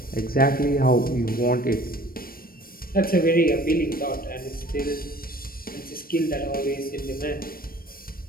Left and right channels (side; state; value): right; late; 0.43 ms